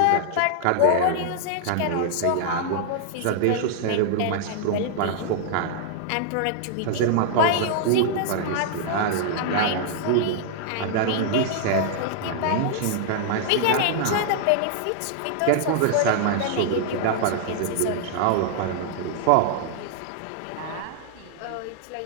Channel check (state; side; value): different; both; correlation -0.01